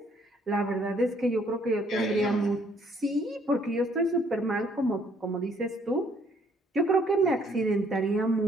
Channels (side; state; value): both; normal; correlation 0.65